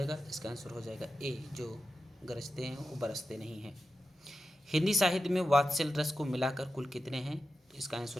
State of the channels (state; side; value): normal; both; correlation 0.91